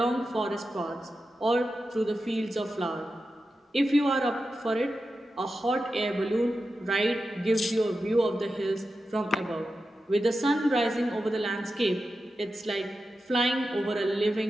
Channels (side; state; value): both; normal; correlation 0.90